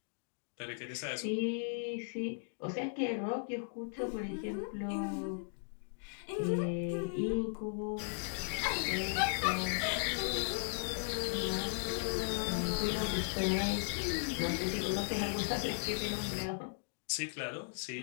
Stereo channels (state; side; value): silent; right; digital silence